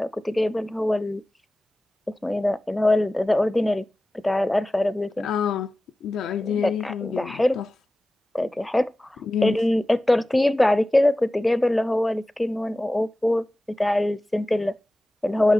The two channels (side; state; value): both; normal; correlation 0.96